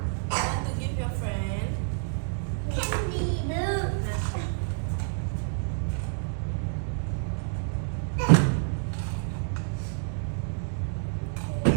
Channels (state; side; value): silent; left; 59 dB below the other